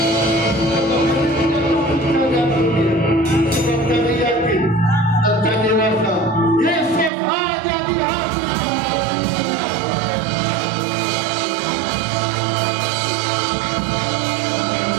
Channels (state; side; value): drops out; left; at 7.1 s